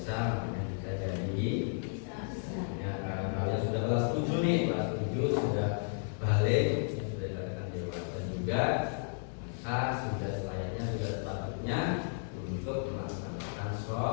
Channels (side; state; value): right; silent; 55 dB below the other